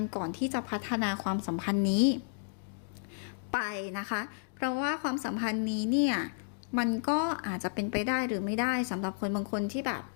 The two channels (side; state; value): right; silent; digital silence